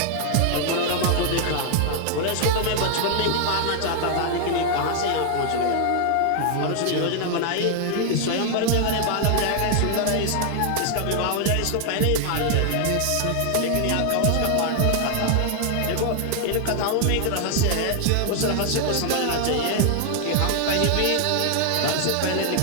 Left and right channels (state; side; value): different; both; correlation 0.00